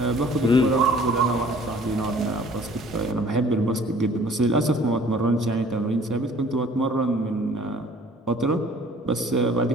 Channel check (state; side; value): normal; both; correlation 0.53